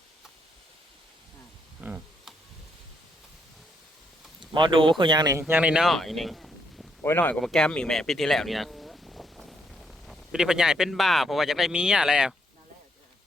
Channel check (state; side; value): normal; both; correlation 0.75